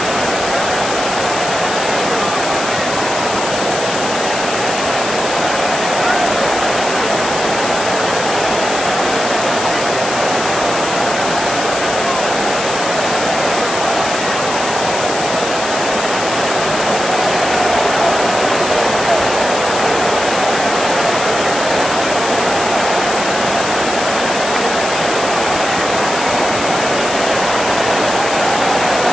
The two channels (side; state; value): left; noise; hiss, 6 dB below the sound